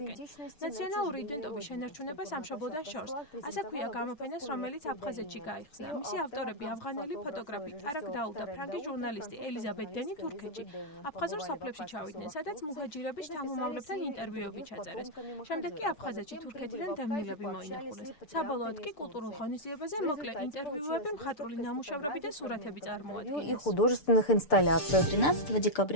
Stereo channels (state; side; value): late; right; 7.0 ms